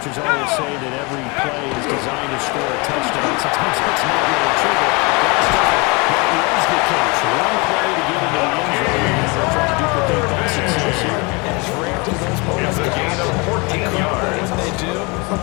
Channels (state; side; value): quieter; right; 28.6 dB